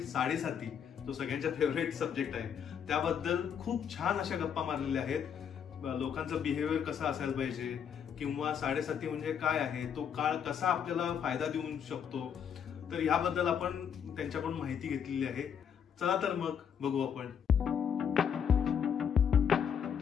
साडेसाती, तो सगळ्यांचा फेवरेट सब्जेक्ट आहे, त्याबद्दल खूप छान अशा गप्पा मारलेल्या आहेत. लोकांचं बिहेवियर कसं असायला पाहिजे किंवा साडेसाती म्हणजे काय आहे, तो काळ कसा आपल्याला फायदा देऊ शकतो, तर याबद्दल आपण त्यांच्याकडून माहिती घेतलेली आहे. चला तर मग बघू आपण.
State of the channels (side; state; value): right; quieter; 7.9 dB